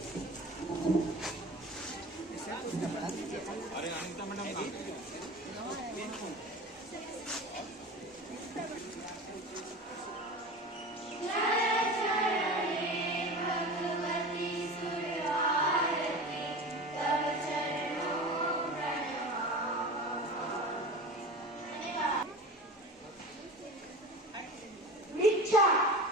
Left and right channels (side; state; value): both; normal; correlation 0.33